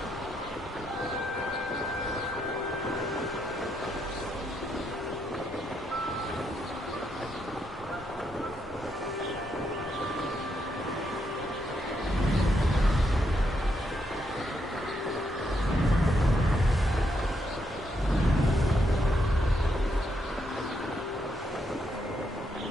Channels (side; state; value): both; normal; correlation 0.78